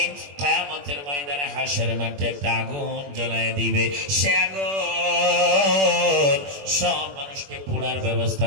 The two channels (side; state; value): left; late; 21 ms